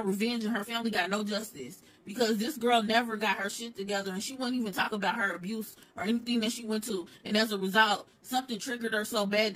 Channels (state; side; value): identical; both; correlation 1.00